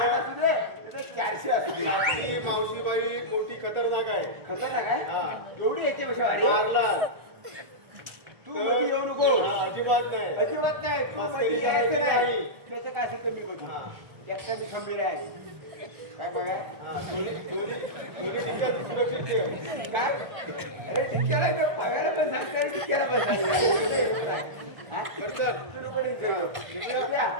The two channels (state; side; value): late; left; 1.4 ms